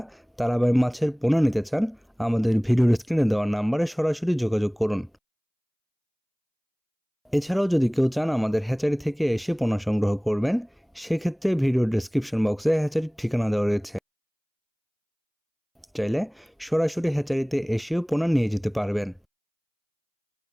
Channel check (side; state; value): both; identical; correlation 1.00